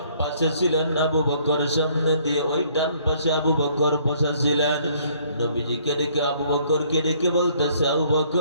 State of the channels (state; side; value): inverted; both; correlation -0.63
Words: পাশে ছিলেন আবু বকর, সামনে দিয়ে ওই ডান পাশে আবু বকর বসা ছিলেন। নবীজিকে ডেকে আবু বকরকে ডেকে বলতেছে, আবু